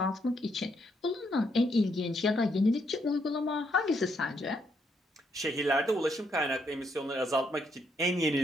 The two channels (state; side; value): normal; both; correlation 0.75